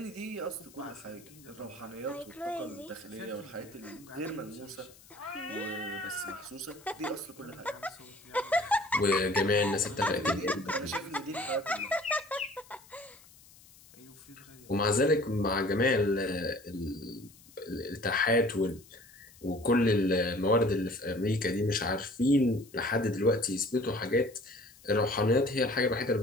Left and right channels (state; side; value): noise; left; hiss, 24 dB below the sound